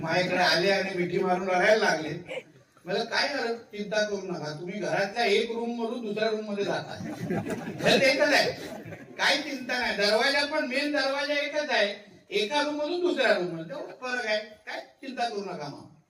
आले आणि मिठी मारून लढायला लागले. मला काय चिंता करू नका, तुम्ही घरातल्या एक रूम मधून दुसऱ्या रूम मध्ये जाता, घर एकच आहे, काही चिंता नाही. दरवाजा पण मेन दरवाजा एकच आहे, एका रूम मधून दुसऱ्या रूम मध्ये तेवढं फरक आहे, काय चिंता करू नका मामा.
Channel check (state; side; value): identical; both; correlation 1.00